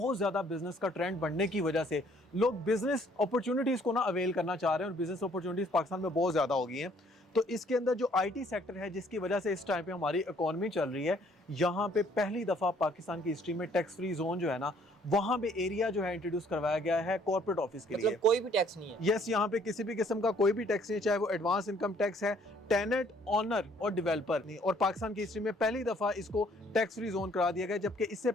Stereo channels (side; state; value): both; normal; correlation 0.62